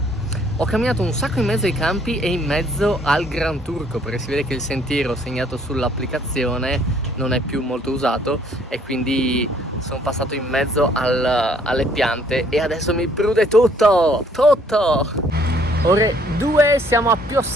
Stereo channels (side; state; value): both; normal; correlation 0.63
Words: Ho camminato un sacco in mezzo ai campi e in mezzo al Gran Turco, perché si vede che il sentiero segnato sull'applicazione non è più molto usato e quindi sono passato in mezzo alle piante e adesso mi prude tutto! Ore 2, siamo a